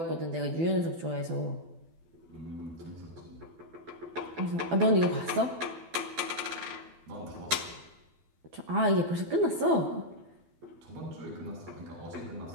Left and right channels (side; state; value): left; late; 12 ms